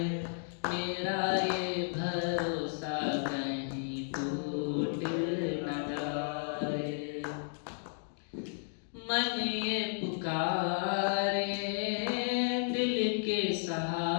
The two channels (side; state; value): right; silent; 55 dB below the other